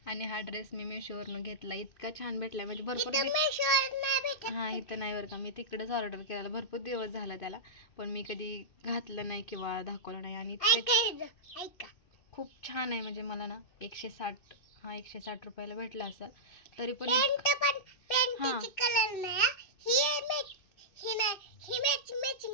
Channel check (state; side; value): late; right; 2.6 ms